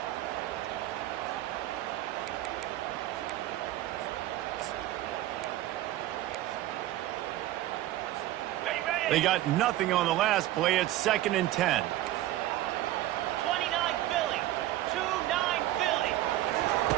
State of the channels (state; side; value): quieter; left; 14.9 dB